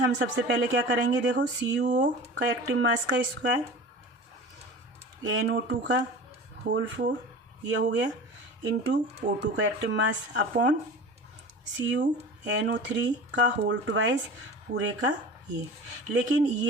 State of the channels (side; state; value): both; normal; correlation 0.36